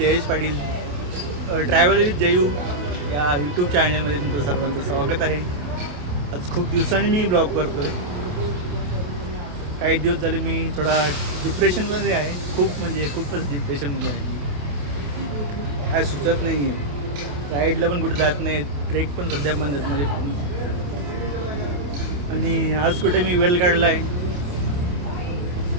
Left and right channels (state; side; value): late; left; 27 ms